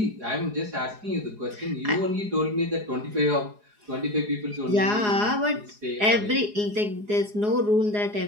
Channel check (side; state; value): left; late; 4.8 ms